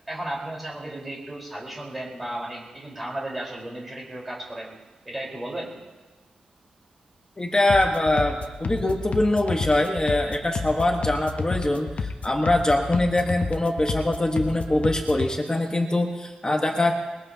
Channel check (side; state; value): both; normal; correlation 0.94